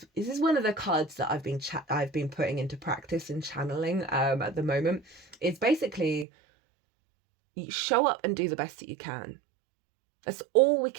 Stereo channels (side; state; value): left; drops out; at 6.2 s